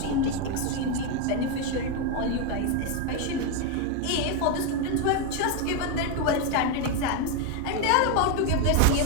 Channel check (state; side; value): different; both; correlation 0.02